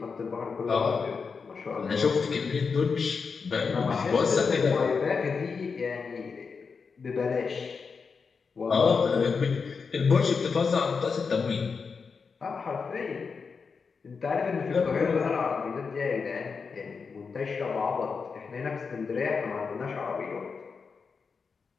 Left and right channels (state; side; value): quieter; right; 5.3 dB